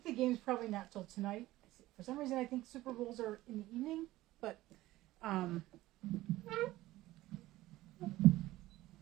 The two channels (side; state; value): left; quieter; 16.9 dB